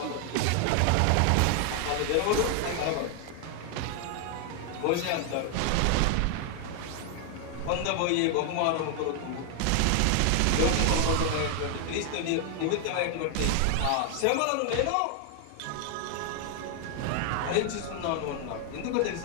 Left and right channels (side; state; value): both; different; correlation 0.00